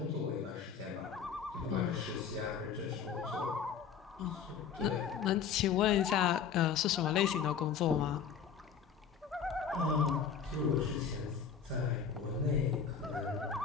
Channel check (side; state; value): right; quieter; 7.1 dB